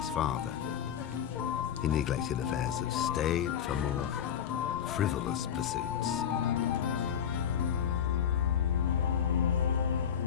father. He neglected affairs of state for more frivolous pursuits.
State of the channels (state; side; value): quieter; right; 8.6 dB